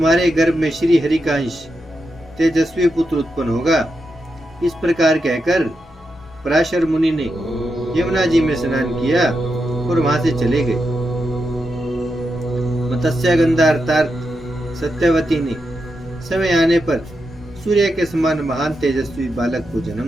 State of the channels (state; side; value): normal; both; correlation 0.86